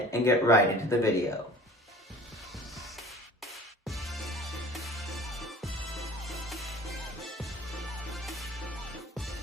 and get right into the video.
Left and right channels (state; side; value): normal; both; correlation 0.43